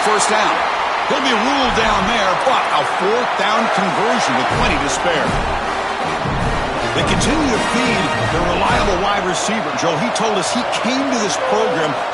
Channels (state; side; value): identical; both; correlation 1.00